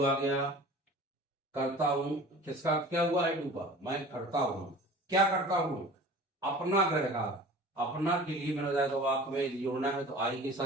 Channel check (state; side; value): normal; both; correlation 0.41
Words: आ गया, करता हूं, किसका क्या हुआ? आई डू का। मैं करता हूं, क्या करता हूं? अपना गृह कार्य। अपना के लिए मैंने बताया तो वाक्य में जोड़ना है, तो आई के